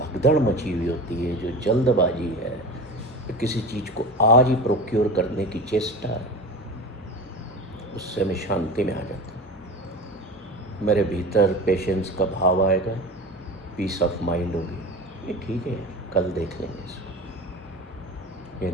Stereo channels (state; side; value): normal; both; correlation 0.31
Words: मची हुई होती है, जो जल्दबाजी है, तो किसी चीज़ को आज ही प्रोक्योर करने की चेष्टा है, उससे मैं शांति में आ जाता हूँ। मेरे भीतर पेशेंस का भाव आएगा, पीस ऑफ माइंड होगी। ये ठीक है, कल देख लेंगे इसको, या